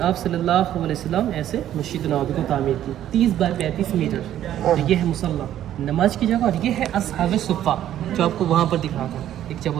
आप सल्लल्लाहु अलैहि वसल्लम ऐसे मस्जिद नबवी को तामीर की 30 बाय 35 मीटर, और ये है मुसल्ला नमाज की जगह, और ये है असहाबे सुफ़ा जो आपको वहाँ पर दिख रहा था एक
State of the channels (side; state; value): left; quieter; 11.7 dB